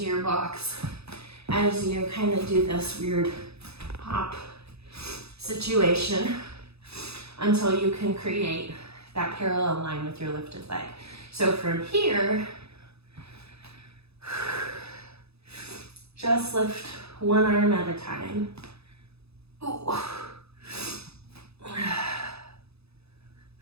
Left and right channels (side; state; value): left; late; 0.79 ms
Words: your blocks as you kind of do this weird hop situation until you can create that parallel line with your lifted leg. So from here, just lift one arm at a time. Ooh.